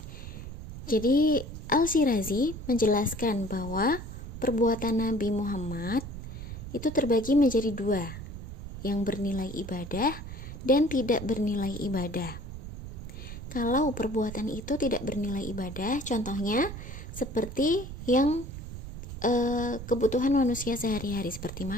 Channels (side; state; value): right; noise; rumble, 10 dB below the sound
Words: Jadi Al-Syirazi menjelaskan bahwa perbuatan Nabi Muhammad itu terbagi menjadi dua, yang bernilai ibadah dan tidak bernilai ibadah. Kalau perbuatan itu tidak bernilai ibadah, contohnya seperti yang kebutuhan manusia sehari-hari seperti